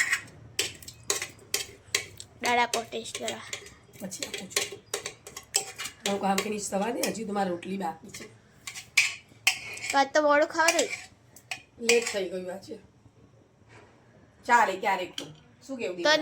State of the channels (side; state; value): both; identical; correlation 1.00